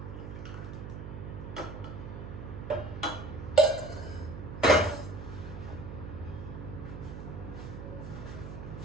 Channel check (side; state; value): right; noise; hum, 9 dB below the sound